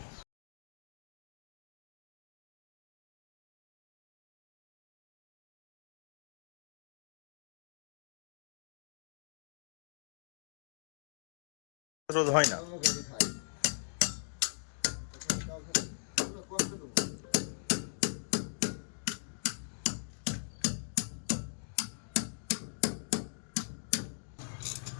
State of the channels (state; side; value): silent; right; digital silence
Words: রোধ হয় না।